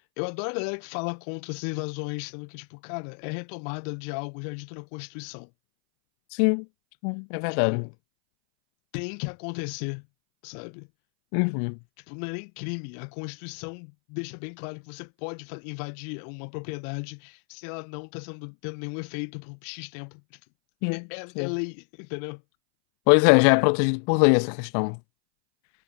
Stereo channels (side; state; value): right; silent; 59 dB below the other